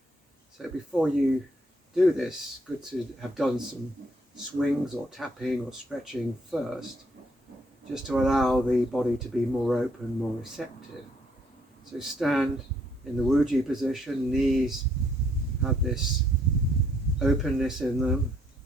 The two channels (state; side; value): normal; both; correlation 0.69